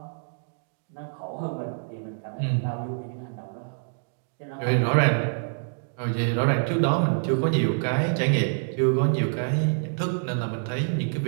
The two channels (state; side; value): silent; left; digital silence